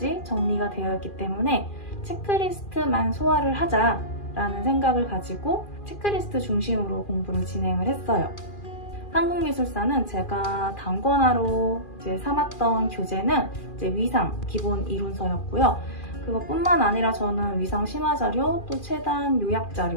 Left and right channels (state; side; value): late; right; 2.4 ms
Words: 정리가 되어 있기 때문에 체크리스트만 소화를 하자라는 생각을 가지고 체크리스트 중심으로 공부를 진행을 했어요. 한국미술사는 제가 단권화로 삼았던 교재는 위상 기본 이론서였고요. 그것뿐만 아니라 저는 위상 심화자료, 또 최단